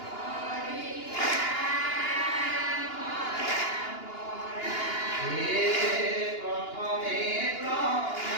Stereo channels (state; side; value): late; right; 2.8 ms